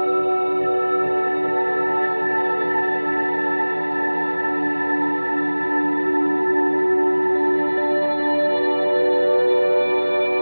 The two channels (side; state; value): both; inverted; correlation -1.00